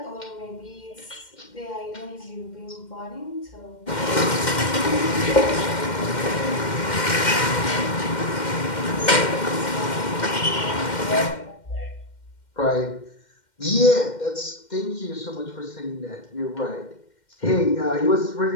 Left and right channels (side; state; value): right; late; 2.1 ms